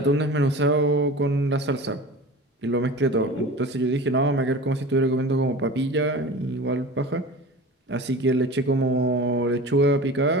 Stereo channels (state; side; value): normal; both; correlation 0.35